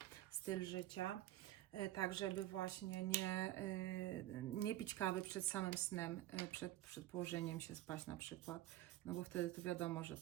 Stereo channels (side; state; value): left; quieter; 14.7 dB